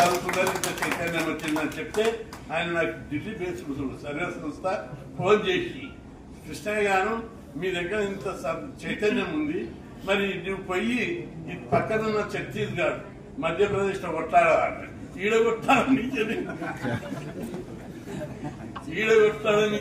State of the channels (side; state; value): both; identical; correlation 1.00